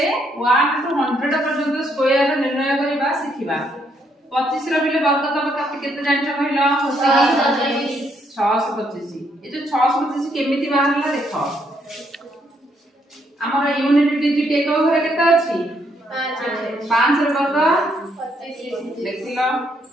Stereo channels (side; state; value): both; normal; correlation 0.73